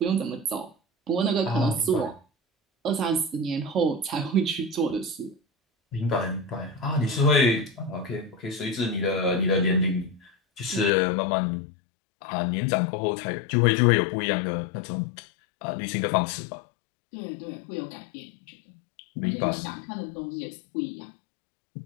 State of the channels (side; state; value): right; drops out; at 10.9 s